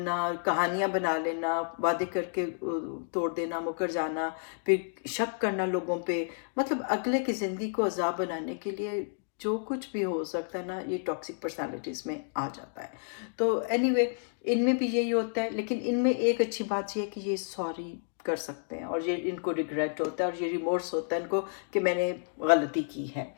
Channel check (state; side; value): silent; right; digital silence